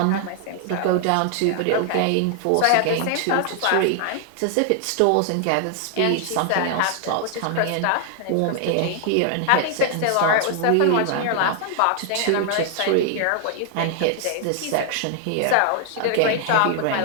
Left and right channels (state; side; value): different; both; correlation 0.00